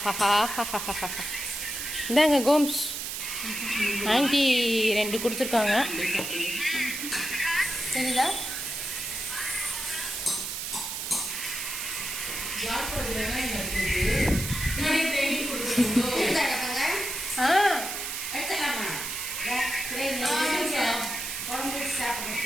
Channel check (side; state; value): right; noise; hiss, 5 dB below the sound